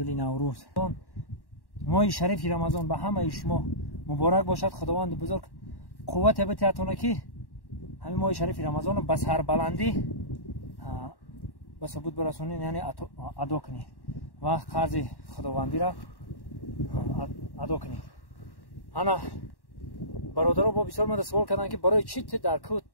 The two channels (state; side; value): late; right; 1.1 ms